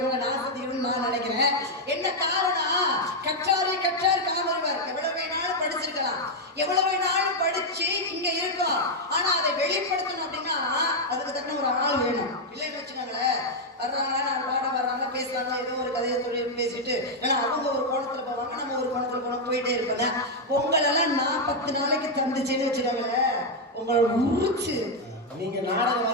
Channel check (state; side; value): normal; both; correlation 0.01